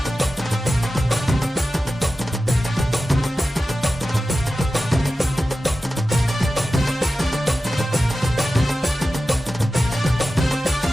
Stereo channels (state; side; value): normal; both; correlation 0.94